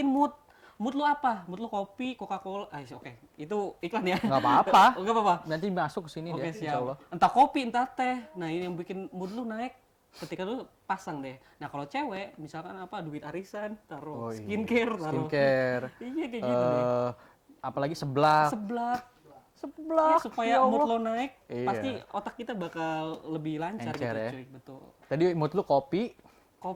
mood. Mood lu apa? Mood lu kopi, Coca-Cola. Oke. Itu iklan ya. Nggak apa-apa. Nggak apa-apa. Nanti masuk ke sini Oke, deh, insya Allah. siap. Entah kopi, entah teh. Nah, ini yang bikin mood lu naik. Ketika lu pasang deh. Nah, kalau cewek, misalkan apa, duit arisan, taruh Oh, iya. skincare, taruh. Skincare. Iya, kayak gitu deh. Apalagi seblak. Seblak. Seblak. Ya, supaya ya mood Allah. lo naik, Iya. pasti otak kita bakal lebih lancar Encer gitu ya. cuy, betul. Tadi mood lu kopi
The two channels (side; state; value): both; identical; correlation 1.00